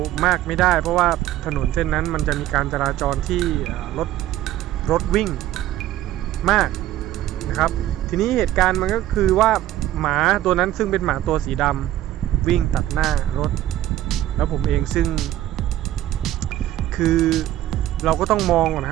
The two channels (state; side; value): quieter; left; 13.6 dB